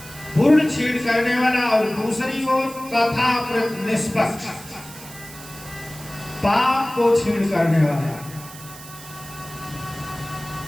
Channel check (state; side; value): noise; right; hiss, 16 dB below the sound